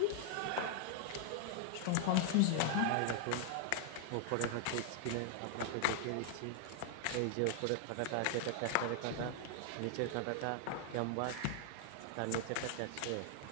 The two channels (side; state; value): both; different; correlation 0.00